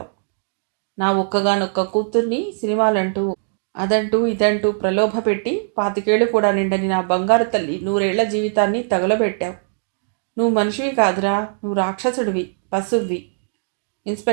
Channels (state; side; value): silent; left; digital silence